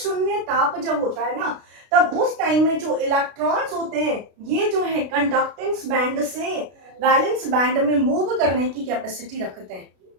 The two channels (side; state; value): left; late; 33 ms